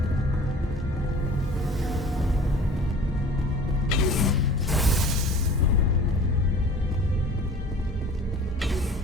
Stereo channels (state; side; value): normal; both; correlation 0.44